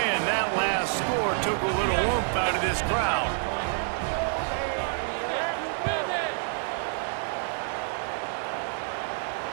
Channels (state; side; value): silent; left; 59 dB below the other